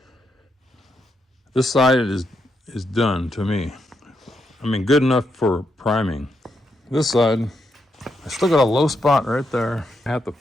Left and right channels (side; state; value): both; normal; correlation 0.81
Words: This side is done to me. I mean, good enough for priming. This side, I still got a low spot right there. I have to